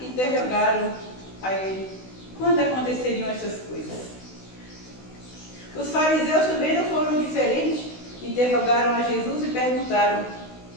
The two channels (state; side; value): late; right; 16 ms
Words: a ele quando aconteceriam essas coisas. Os fariseus também não foram diferentes, interrogaram a Jesus e perguntaram,